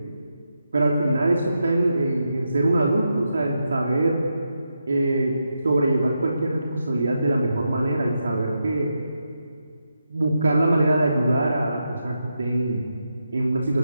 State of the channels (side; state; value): both; inverted; correlation -0.85